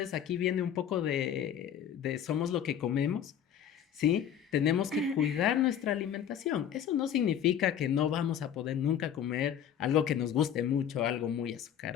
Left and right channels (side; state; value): right; quieter; 9.3 dB